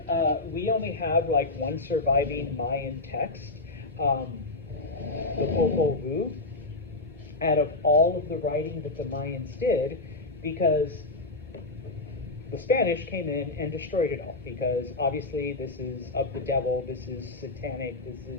we only have like one surviving Mayan text, the Popol Vuh, out of all of the writing that the Mayans did, because the Spanish came in and destroyed it all, because obviously this is of the devil, this is satanic, this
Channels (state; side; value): quieter; right; 3.0 dB